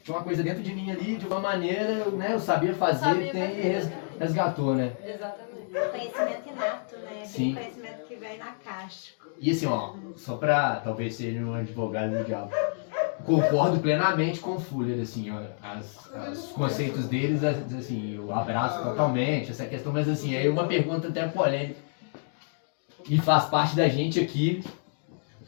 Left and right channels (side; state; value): right; silent; digital silence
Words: tinha uma coisa dentro de mim ali, de uma maneira, né? Eu sabia fazer, resgatou, né? Exatamente. Conhecimento inato, né? Sim. Aquele conhecimento que vem na caixa. E assim, ó, só pra talvez ser um advogado do diabo, concordo plenamente com o Fuller, assim, ó, os conceitos deles, assim, eu abraço totalmente essa questão, mas assim, aí uma pergunta até polêmica, e faz parte da gente aqui